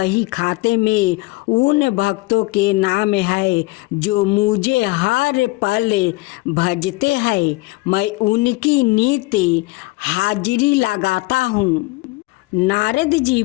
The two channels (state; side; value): quieter; right; 22.1 dB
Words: खाते में उन भक्तों के नाम है जो मुझे हर पल भजते हैं। मैं उनकी नित्य हाजिरी लगाता हूँ। नारद जी